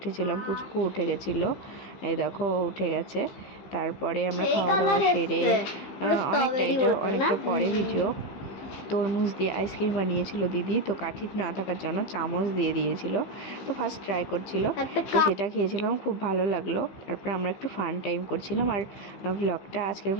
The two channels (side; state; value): right; late; 15 ms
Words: পুচকু উঠে গেছিলো। এই দেখো, উঠে গেছে। তারপরে আমরা খাওয়া দাওয়া সেরে অনেকটা পরে ভিডিও। তরমুজ দিয়ে আইসক্রিম বানিয়েছিল দিদি, তো কাঠি না থাকার জন্য চামচ দিয়ে দিয়েছিল। তো ফার্স্ট ট্রাই করছিল, তো সেটা খেয়েছিলাম, খুব ভালো লাগলো। তারপরে আমরা একটু ফান টাইম করছিলাম। আর আজকের